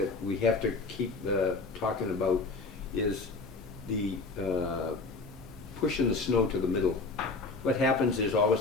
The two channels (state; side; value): quieter; right; 3.7 dB